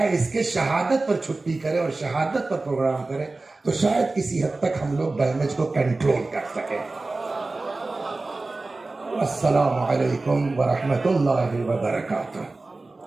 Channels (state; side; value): quieter; left; 3.3 dB